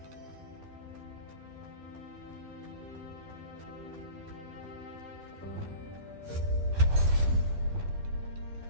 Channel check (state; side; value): late; left; 12 ms